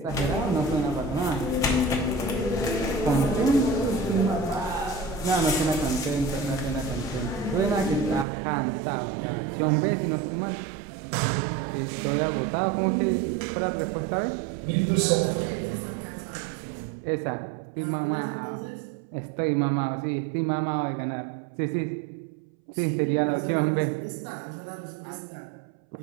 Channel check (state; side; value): drops out; left; at 8.2 s